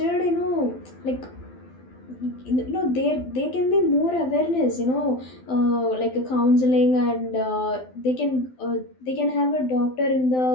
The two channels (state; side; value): late; right; 12 ms